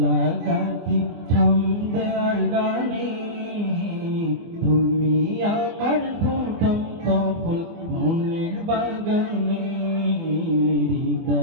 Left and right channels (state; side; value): late; left; 24 ms